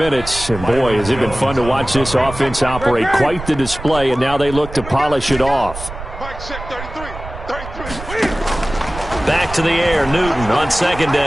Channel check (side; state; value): right; noise; rumble, 11 dB below the sound